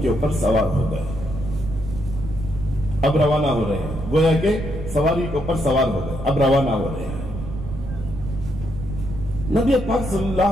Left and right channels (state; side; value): noise; right; rumble, 9 dB below the sound